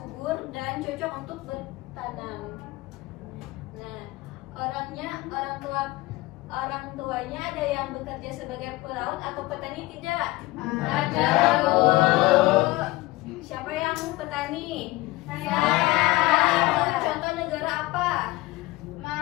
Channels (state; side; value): quieter; right; 19.8 dB